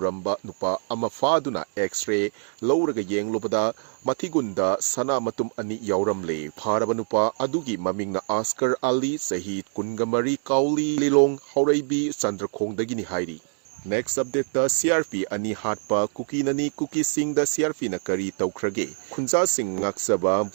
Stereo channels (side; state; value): left; silent; 62 dB below the other